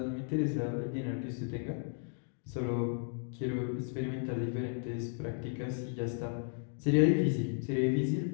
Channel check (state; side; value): silent; right; 55 dB below the other